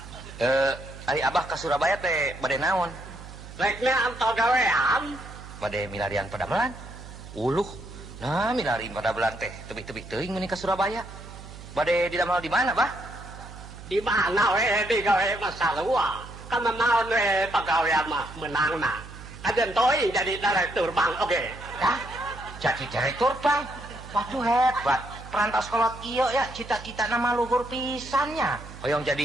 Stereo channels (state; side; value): noise; right; hum, 15 dB below the sound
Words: Ari Abah ka Surabaya teh bade naon? Reknya antau gawean. Bade milarian padamelan. Uluh. Nah, milarian padamelan teh tebih-tebih teuing meuni ka Surabaya. Bade didamel di mana, Bah? Di mana we di gawe masalua. Kan naon we pagawean mah menangna. Ajen teuing jadi direktur bank oge. Dah, jadi direktur bang. Waduh hebat. Perantas kolot iyo ya cita-cita nama luhur pisannya. Hoyong